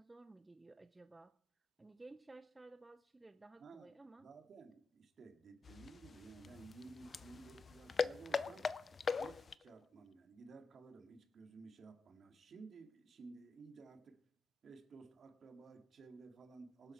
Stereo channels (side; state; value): right; quieter; 3.8 dB